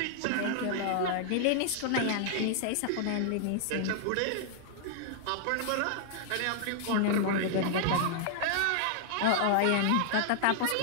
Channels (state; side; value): different; both; correlation -0.01